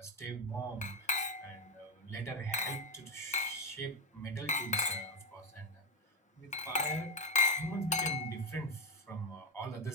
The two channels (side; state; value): both; normal; correlation 0.08